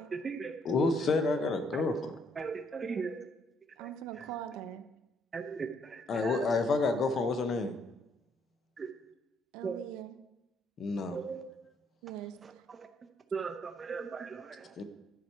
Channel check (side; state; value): both; normal; correlation 0.70